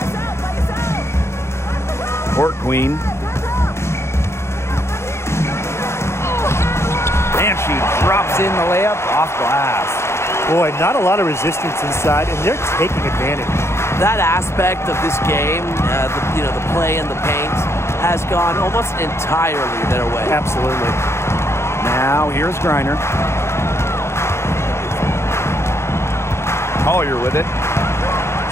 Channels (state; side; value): late; right; 0.13 ms